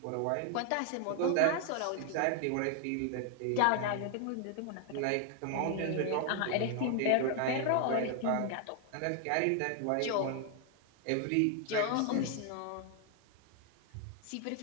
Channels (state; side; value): different; both; correlation 0.00